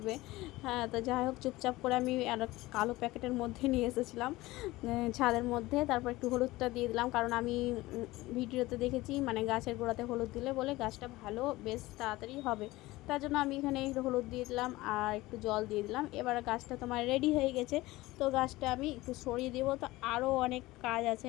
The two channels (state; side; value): quieter; right; 19.0 dB